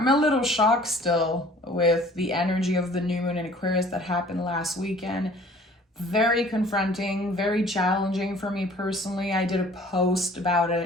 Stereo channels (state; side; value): normal; both; correlation 0.51